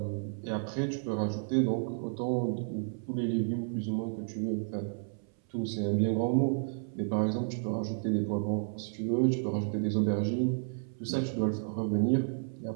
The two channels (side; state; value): left; silent; 57 dB below the other